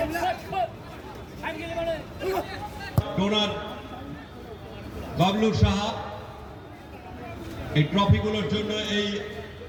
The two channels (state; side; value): identical; both; correlation 1.00